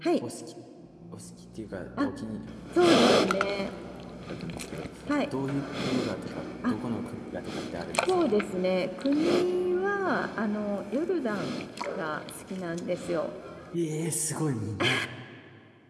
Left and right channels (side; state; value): both; identical; correlation 1.00